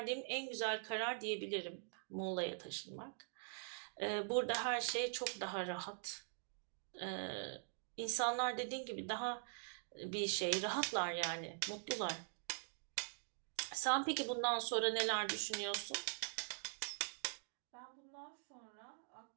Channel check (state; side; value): silent; left; digital silence